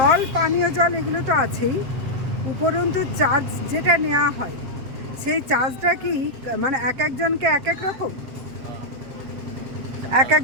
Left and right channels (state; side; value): late; left; 7.7 ms